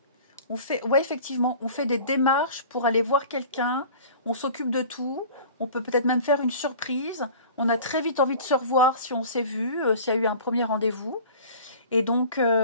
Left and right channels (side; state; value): both; inverted; correlation -0.43